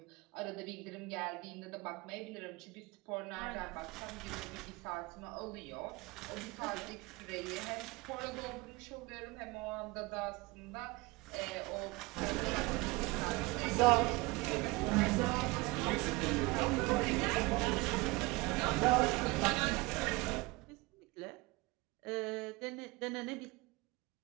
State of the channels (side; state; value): left; quieter; 23.6 dB